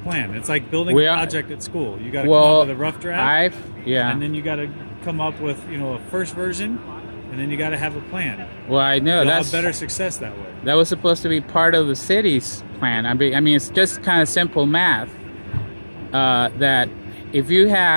It's like building a project at school. You got to come up with a rough draft, and then you got to come up with a first version, and then you got to have a plan. Well, I know you'll have better success that way. That was supposed to be part of the city's plan. I mean, it's just kind of simple math. That if you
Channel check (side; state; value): both; inverted; correlation -1.00